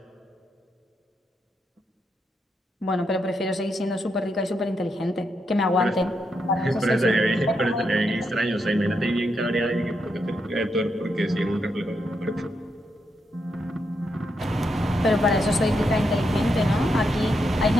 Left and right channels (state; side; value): normal; both; correlation 0.81